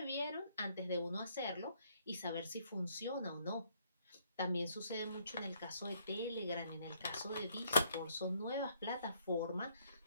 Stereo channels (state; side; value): inverted; both; correlation -0.68